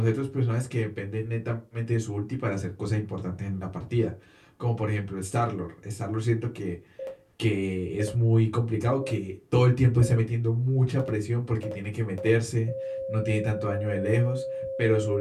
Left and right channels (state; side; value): identical; both; correlation 1.00